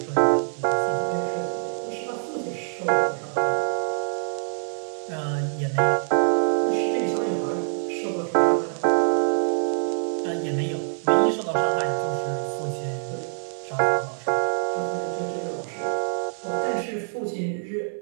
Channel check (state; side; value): silent; left; 57 dB below the other